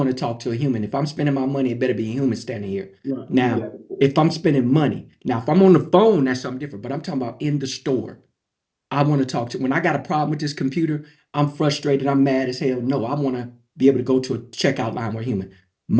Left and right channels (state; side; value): identical; both; correlation 1.00